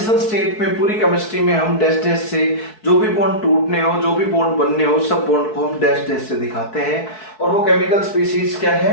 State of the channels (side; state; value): right; late; 4.6 ms